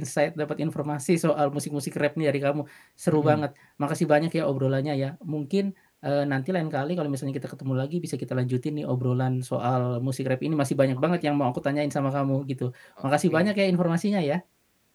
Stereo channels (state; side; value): identical; both; correlation 1.00